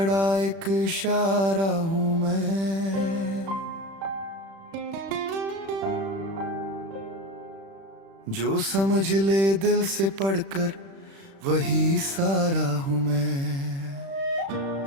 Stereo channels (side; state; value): left; late; 36 ms